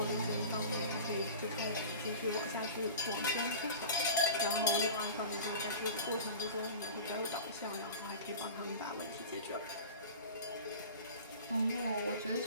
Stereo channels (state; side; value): inverted; both; correlation -0.35